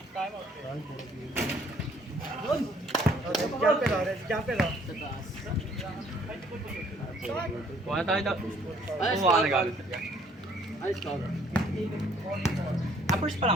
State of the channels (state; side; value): normal; both; correlation 0.61